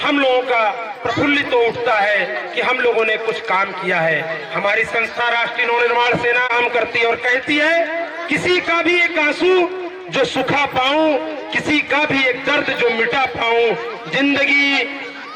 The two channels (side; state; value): both; identical; correlation 1.00